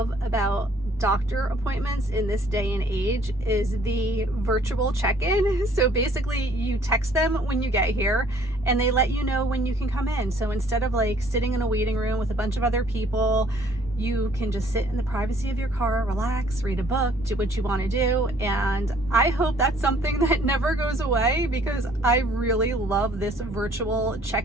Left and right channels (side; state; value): both; normal; correlation 0.59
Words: about doctor appointments in this day and age is the virtual check-in. So basically you text them when you get here and they let you know when you can come in. So instead of like sitting in a waiting room with a bunch of other people, you can just sit in the privacy of your car, relax, read a book, do what you want to do. And I hope that's something that never goes away, because I really love this virtual